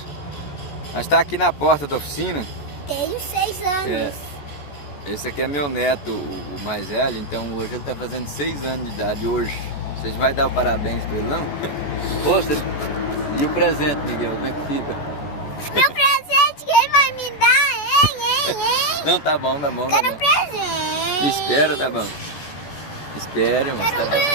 Nós estamos aqui na porta da oficina. Tenho 6 anos. Esse aqui é meu neto, o mais velho, então hoje ele está fazendo 6 anos de idade hoje. Vocês vão dar o parabéns para ele, não? E o presente, Miguel, como é que fica? Meu presente, quem vai me dar, hein? Não, tá bom, tá bom, tá Quero bom. presente. Espera, tá bom. Espere, mas tá Quero bom.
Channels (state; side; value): late; right; 14 ms